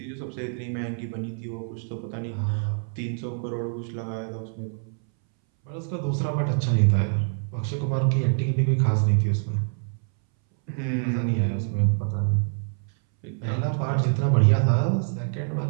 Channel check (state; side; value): silent; left; 61 dB below the other